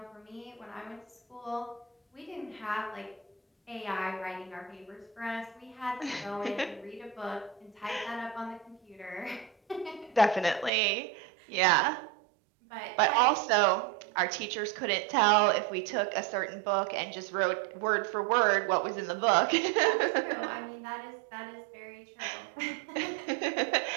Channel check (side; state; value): left; drops out; at 10.7 s